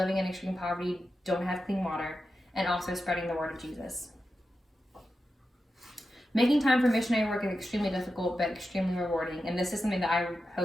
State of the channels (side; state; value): both; normal; correlation 0.90